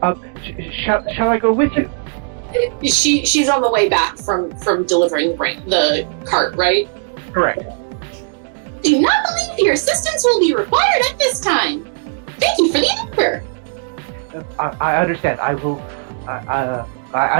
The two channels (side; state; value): left; silent; digital silence